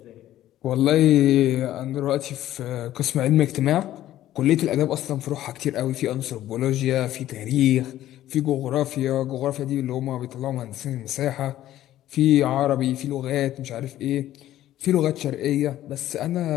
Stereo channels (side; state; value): right; quieter; 13.4 dB